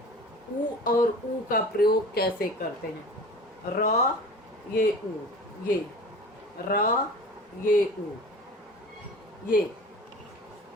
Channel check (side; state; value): both; normal; correlation 0.39